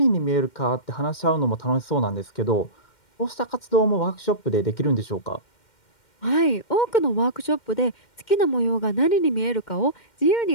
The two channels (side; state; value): right; late; 2.1 ms